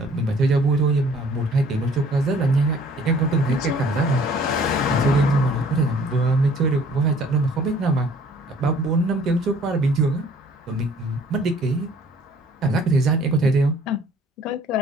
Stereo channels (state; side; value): normal; both; correlation 0.55